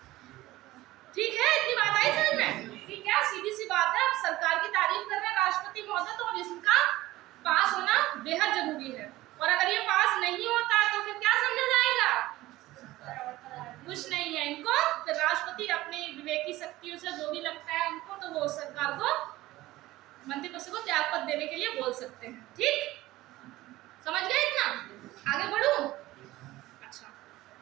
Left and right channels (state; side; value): quieter; left; 17.3 dB